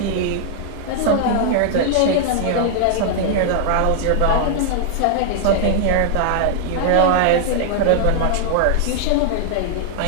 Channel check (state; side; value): different; both; correlation -0.01